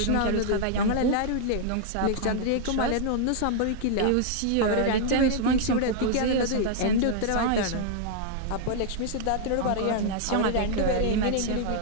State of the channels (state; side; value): different; both; correlation -0.01